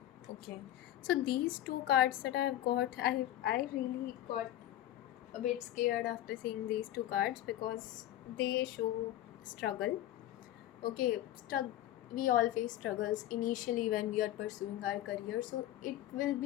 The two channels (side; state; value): right; quieter; 13.4 dB